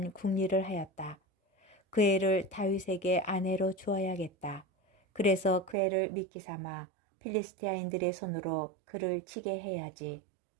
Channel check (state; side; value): drops out; left; at 5.8 s